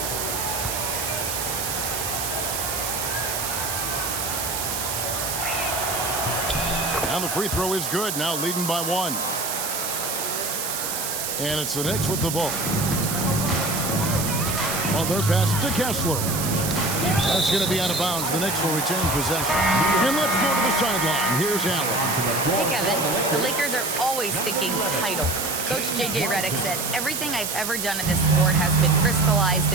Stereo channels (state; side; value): noise; right; hiss, 3 dB below the sound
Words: And the free throw is good, now leading by 1. And it's the Knicks with the ball. Butler passes to Kessler. That's going to be out of bounds. The Knicks will retain possession. And let's go to the sideline. Here's Allen. Hey, Kevin. The Lakers are always thinking title. Coach J.J. Redick said, everything I've ever done in this sport has been crystallized